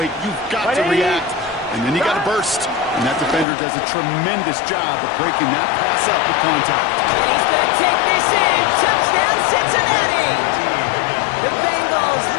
You've got to react. And then you got to burst. And that defender does a tremendous job of breaking that pass up with contact. And he's going to take this in. Touchdown, Cincinnati! The Bengals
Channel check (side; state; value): right; drops out; at 3.5 s